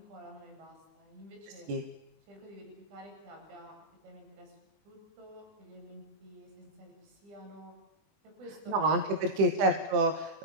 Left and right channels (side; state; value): left; late; 20 ms